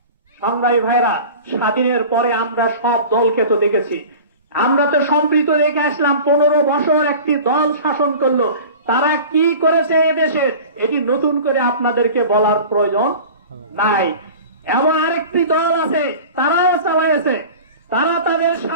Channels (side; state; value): both; inverted; correlation -0.38